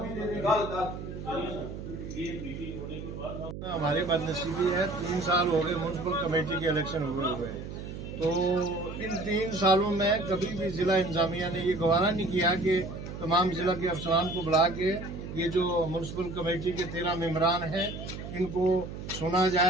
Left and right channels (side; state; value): right; noise; hum, 9 dB below the sound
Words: हमारी बदनसीबी है, 3 साल हो गए म्यूनसिपल कमेटी के इलेक्शन हुए। तो इन 3 सालों में कभी भी जिला इंतजामिया ने ये गवारा नहीं किया कि तमाम जिला के अफसरान को बुला के ये जो म्यूनसिपल कमेटी के 13 मेंबरान हैं इनको सुना